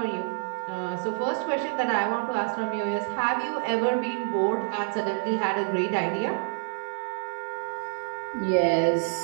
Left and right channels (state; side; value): silent; left; digital silence